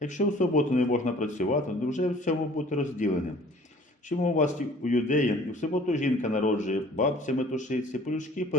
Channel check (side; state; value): both; normal; correlation 0.51